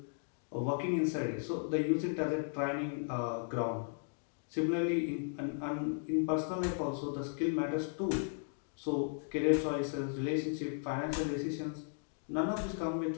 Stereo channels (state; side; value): silent; right; digital silence